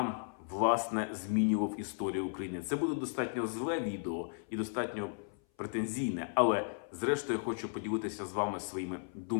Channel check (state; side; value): silent; right; 54 dB below the other